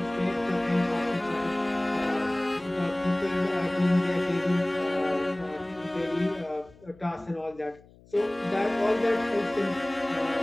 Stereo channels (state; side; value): noise; left; hum, 25 dB below the sound